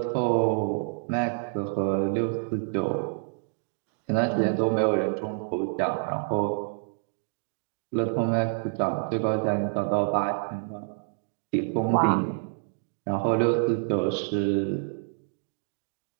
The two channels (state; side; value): silent; left; digital silence